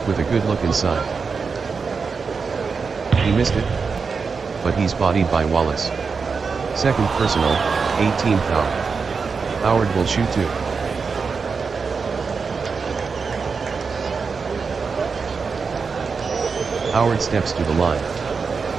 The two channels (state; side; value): quieter; left; 5.1 dB